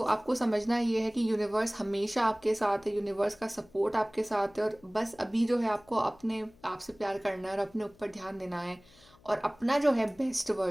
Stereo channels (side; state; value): left; noise; hum, 28 dB below the sound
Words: आपको समझना ये है कि यूनिवर्स हमेशा आपके साथ है, यूनिवर्स का सपोर्ट आपके साथ है, और बस अभी जो है आपको अपने आप से प्यार करना है और अपने ऊपर ध्यान देना है, और अपना जो है बेस्ट